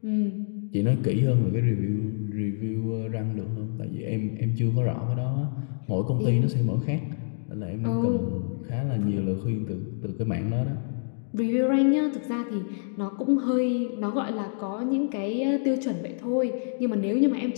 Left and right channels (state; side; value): silent; right; digital silence